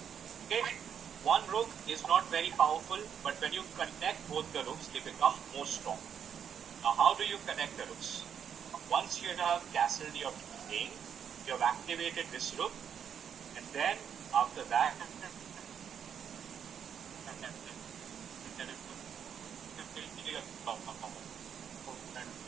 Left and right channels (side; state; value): left; quieter; 8.1 dB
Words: Okay. One rook is not very powerful, but when you connect both the rooks, they become more strong. Now, how do you connect the rooks? Once you have castled your king, you have activated this rook, and then after that,